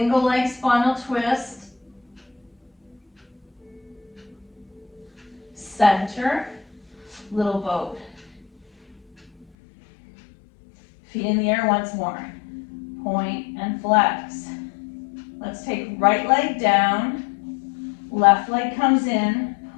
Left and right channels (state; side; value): drops out; right; at 9.5 s